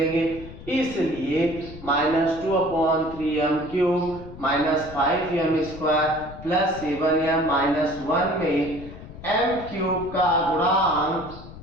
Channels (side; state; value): left; noise; rumble, 15 dB below the sound